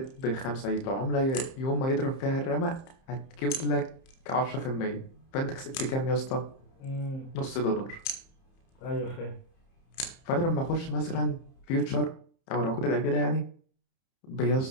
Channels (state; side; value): late; right; 30 ms